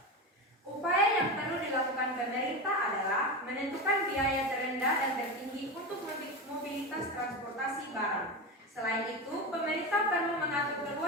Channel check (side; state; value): both; normal; correlation 0.20